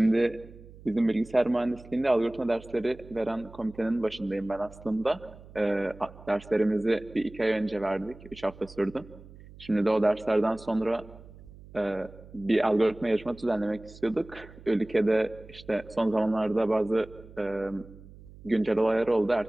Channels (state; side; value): noise; right; hum, 19 dB below the sound